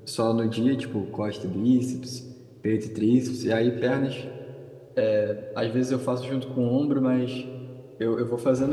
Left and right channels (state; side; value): identical; both; correlation 1.00